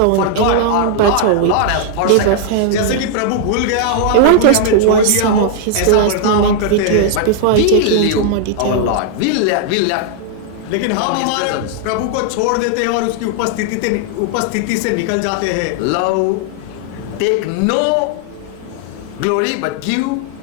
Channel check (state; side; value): different; both; correlation 0.00